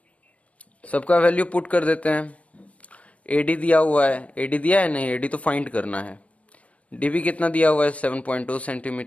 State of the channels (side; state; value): right; late; 0.065 ms